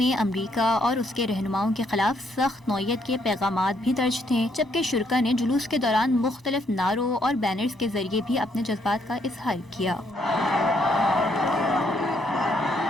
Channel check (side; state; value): both; normal; correlation 0.72